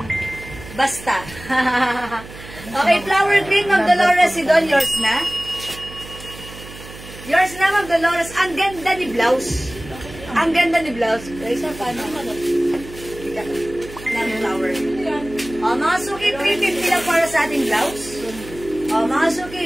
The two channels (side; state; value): right; noise; hum, 16 dB below the sound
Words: basta. Okay, flower green, Ma'am Dolores Sidon, yours na? Yours na, Ma'am Dolores. Ang ganda ni blouse. Ang ganda ni blouse. Guys, paano? Ng flower. O, mga suki, 350 lang para sa ating blouse. O, mga suki,